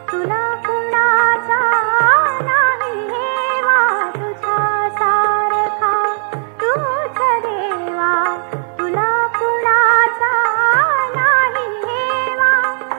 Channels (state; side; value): silent; left; digital silence